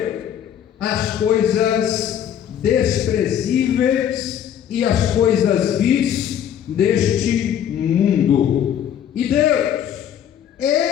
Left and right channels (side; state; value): right; quieter; 9.6 dB